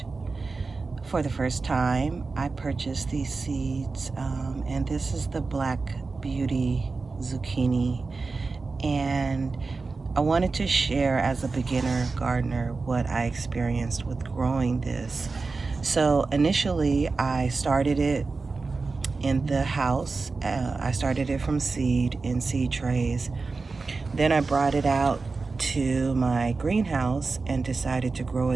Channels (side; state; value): left; quieter; 4.1 dB